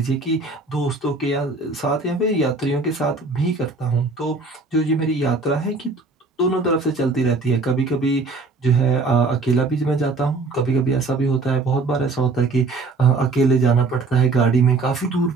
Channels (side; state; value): left; quieter; 3.7 dB